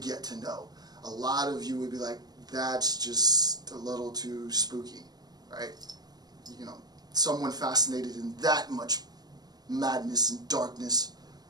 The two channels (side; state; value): left; late; 0.19 ms